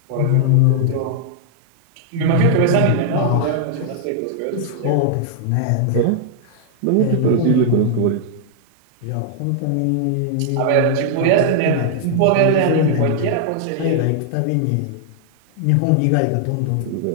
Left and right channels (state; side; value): different; both; correlation -0.01